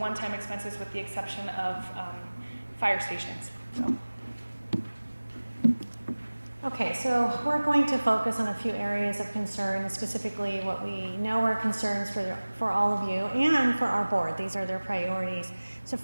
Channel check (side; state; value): both; inverted; correlation -1.00